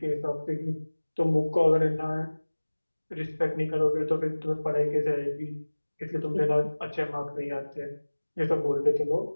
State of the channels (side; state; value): both; inverted; correlation -1.00